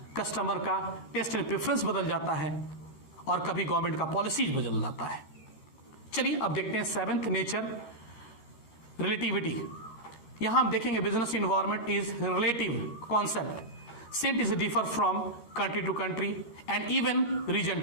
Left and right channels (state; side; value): late; right; 14 ms